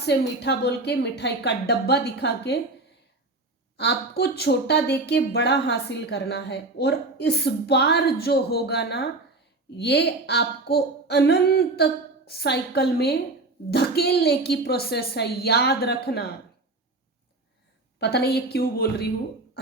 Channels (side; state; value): left; quieter; 3.1 dB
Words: मीठा बोल के, मिठाई का डब्बा दिखा के आपको छोटा दे के बड़ा हासिल करना है। और इस बार जो होगा ना, ये आपको अनंत साइकिल में धकेलने की प्रोसेस है, याद रखना। पता नहीं ये क्यों बोल रही हूं,